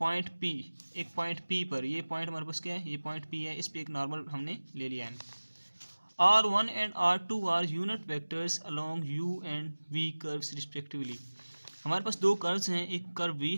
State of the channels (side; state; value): both; inverted; correlation -1.00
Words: P, एक पॉइंट P पर। ये पॉइंट हमारे पास क्या है? ये पॉइंट P है, इस पे एक नॉर्मल हमने ले लिया N. R1 and R2 are unit vectors along U and V curves respectively. हमारे पास दो कर्व्स हैं, एक कर्व V